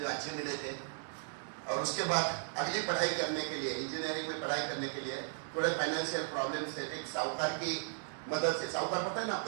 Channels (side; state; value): left; silent; digital silence